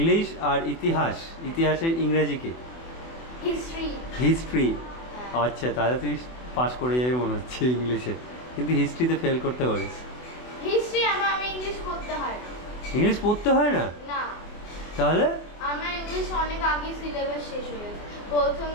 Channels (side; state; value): right; late; 24 ms